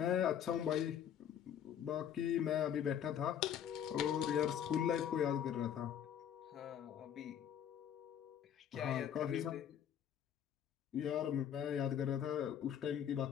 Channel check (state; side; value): quieter; right; 9.2 dB